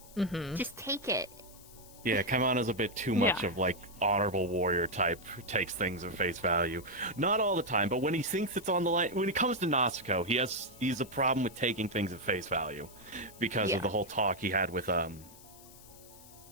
Just take it. Yeah, Kaimana's a bit too much of, like, honorable warrior type, who takes things at face value. Not all the time, but when he thinks it's on the line, when it comes to Natsuko, he's a problem with taking things at face value. Because of the whole talk he had with,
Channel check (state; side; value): noise; left; hiss, 21 dB below the sound